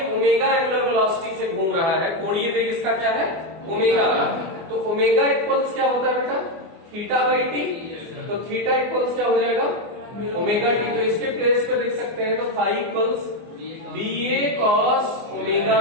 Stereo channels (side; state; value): left; late; 24 ms